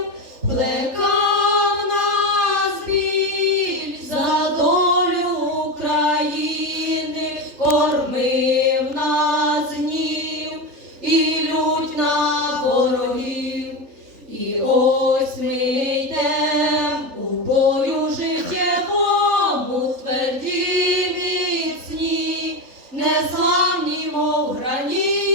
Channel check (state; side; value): late; left; 3.8 ms